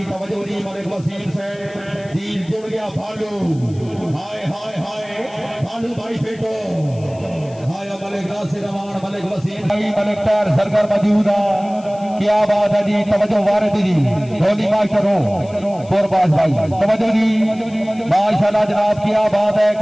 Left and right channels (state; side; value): noise; left; hiss, 26 dB below the sound